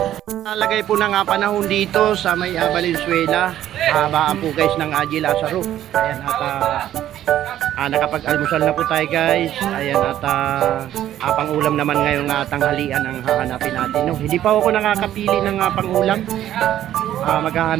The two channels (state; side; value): quieter; left; 12.1 dB